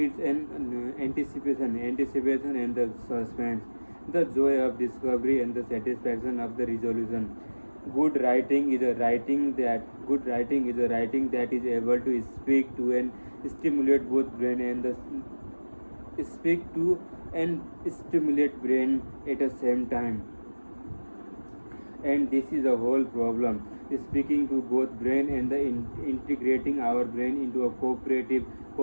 an anticipation and the suspense, the joy of discovery and the satisfaction of the resolution. Good writing is a writing that is able to speak to and stimulate both brain and the speak to and stimulate brain at the same time. And this is the whole problem, speaking to both brain and the integrating our brain into a cooperative,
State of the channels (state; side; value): inverted; both; correlation -1.00